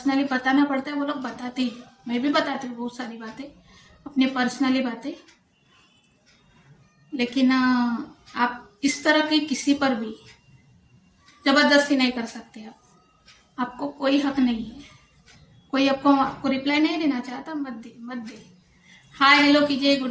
बताना पड़ता है वो लोग बताते ही। मैं भी बताती हूँ बहुत सारी बातें, अपनी पर्सनली बातें। लेकिन आप इस तरह की किसी पर भी जबरदस्ती नहीं कर सकते। आपको कोई हक नहीं है। कोई आपको रिप्लाई नहीं देना चाहता, मत दे। हाय हेलो कीजिए,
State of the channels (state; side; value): identical; both; correlation 1.00